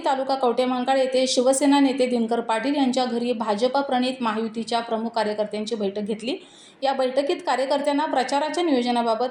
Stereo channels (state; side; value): identical; both; correlation 1.00